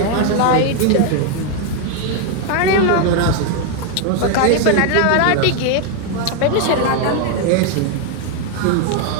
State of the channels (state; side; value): different; both; correlation 0.01